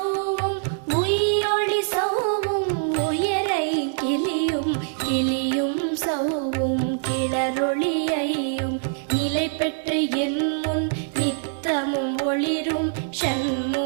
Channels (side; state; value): left; silent; digital silence